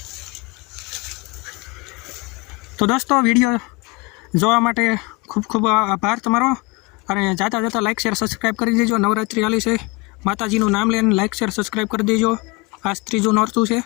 તો દોસ્તો વિડીયો જોવા માટે ખૂબ ખૂબ આભાર તમારો અને જાતા જતા લાઇક શેર સબસ્ક્રાઈબ કરી દેજો નવરાત્રિ હાલી છે માતાજીનું નામ લઈને લાઇક શેર સબસ્ક્રાઈબ કરી દેજો આજ ત્રીજું નોરતું છે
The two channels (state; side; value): quieter; right; 24.9 dB